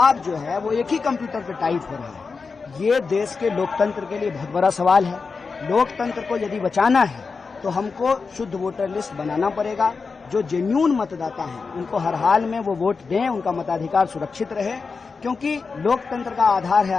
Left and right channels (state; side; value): quieter; right; 4.7 dB